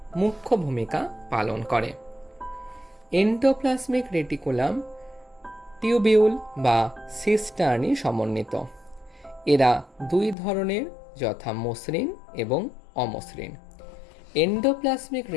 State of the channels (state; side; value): drops out; right; at 10.4 s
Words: মুখ্য ভূমিকা পালন করে। এন্ডোপ্লাজমিক রেটিকুলাম টিউবিউল বা সিস্টার্নি সমন্বিত। এরা দুই ধরনের, যথা মসৃণ এবং অমসৃণ। এন্ডোপ্লাজমিক